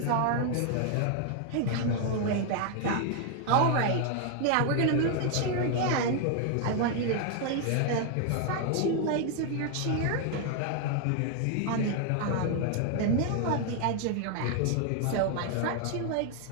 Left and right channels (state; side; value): different; both; correlation 0.00